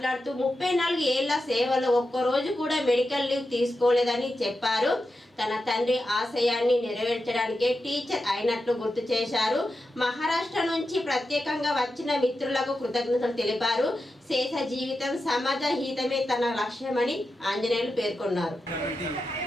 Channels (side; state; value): both; normal; correlation 0.89